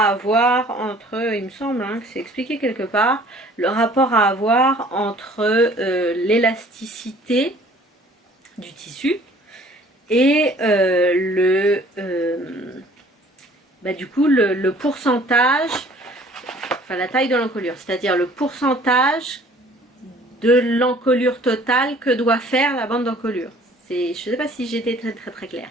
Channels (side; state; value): both; normal; correlation 0.53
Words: avoir entre, il me semble hein, que c'est expliqué quelque part, le rapport à avoir entre l'élasticité du tissu et du coup le pourcentage, enfin la taille de l'encolure, c'est-à-dire le pourcentage de l'encolure totale que doit faire la bande d'encolure. Je ne sais pas si j'étais très claire.